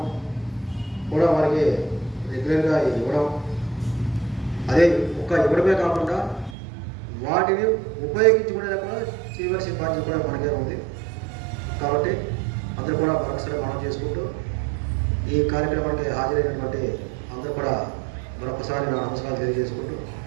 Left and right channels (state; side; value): drops out; left; at 6.6 s